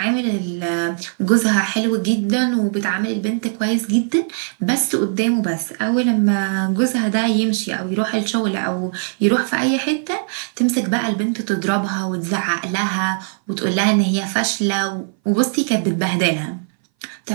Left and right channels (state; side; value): silent; left; 61 dB below the other